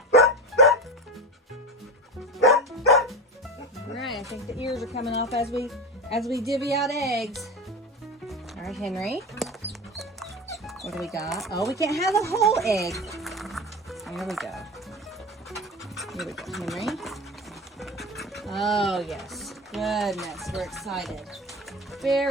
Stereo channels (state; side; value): normal; both; correlation 0.25